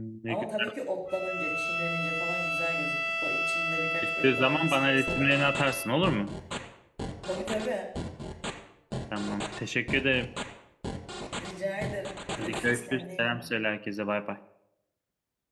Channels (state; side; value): identical; both; correlation 1.00